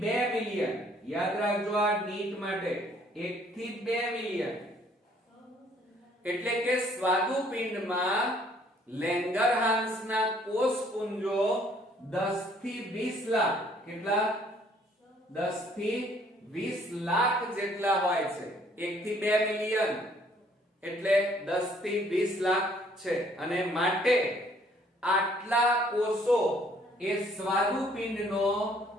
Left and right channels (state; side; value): normal; both; correlation 0.62